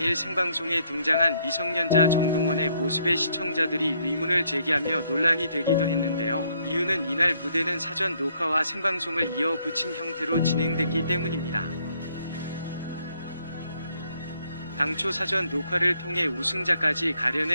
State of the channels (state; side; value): inverted; both; correlation -0.70